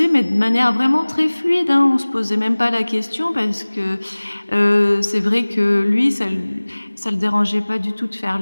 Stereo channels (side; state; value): both; inverted; correlation -1.00